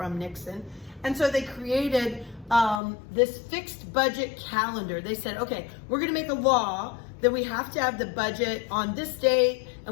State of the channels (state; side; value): drops out; right; at 2.8 s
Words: Nixon. And so they created this fixed budget calendar. They said, okay, we're going to make a law that we have to have the budget on this date,